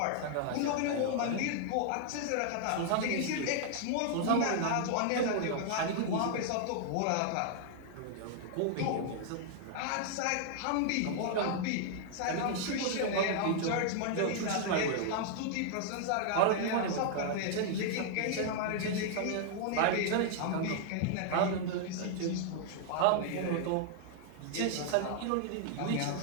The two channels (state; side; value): different; both; correlation 0.00